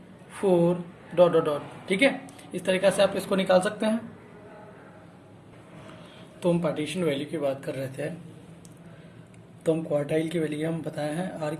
4 डॉट डॉट डॉट। ठीक है, इस तरीके से आप इसको निकाल सकते हैं। तो हम पार्टीशन वैल्यू की बात कर रहे थे, तो हम क्वार्टाइल की वैल्यू हम बताए हैं, आर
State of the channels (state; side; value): identical; both; correlation 1.00